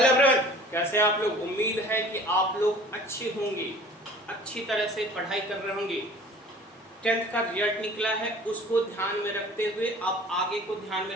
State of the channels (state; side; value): normal; both; correlation 0.47